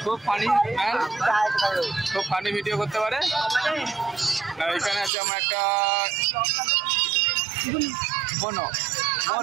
খুব ফানি ম্যান, খুব ফানি ভিডিও করতে পারে। আর এখানে আছে আমার একটা বোন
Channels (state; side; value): drops out; left; at 5.1 s